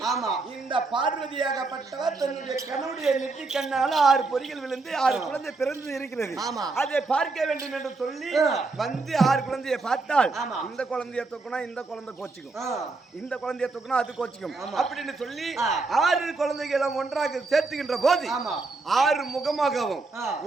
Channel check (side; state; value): left; quieter; 3.7 dB